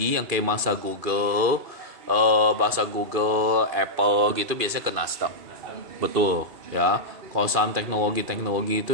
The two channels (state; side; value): late; left; 2.4 ms